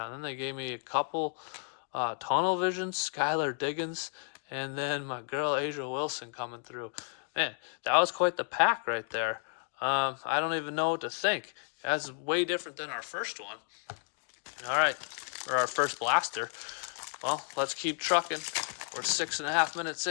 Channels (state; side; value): silent; right; 56 dB below the other